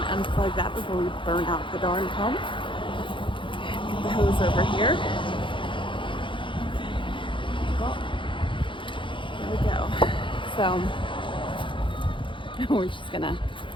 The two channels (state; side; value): late; right; 0.24 ms